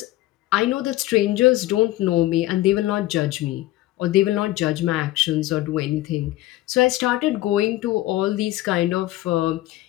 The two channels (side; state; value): right; quieter; 16.5 dB